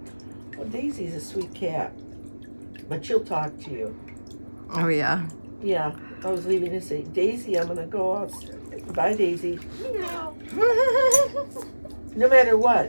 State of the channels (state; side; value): inverted; both; correlation -1.00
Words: Well, Daisy's a sweet cat, but she'll talk to you. Oh yeah. Yeah, I was leaving to say, Daisy, I'm gonna go out. Bye, Daisy. Meow. No matter